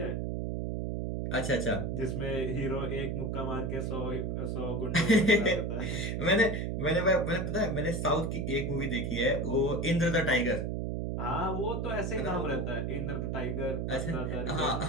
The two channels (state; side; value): noise; right; hum, 1 dB below the sound